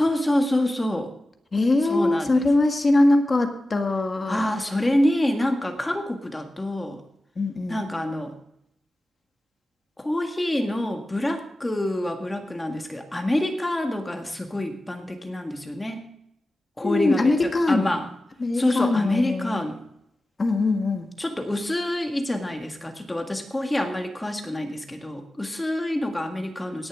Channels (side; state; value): both; normal; correlation 0.94